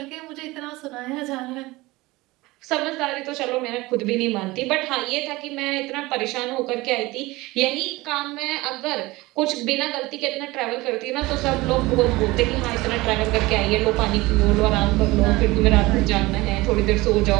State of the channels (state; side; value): quieter; left; 20.8 dB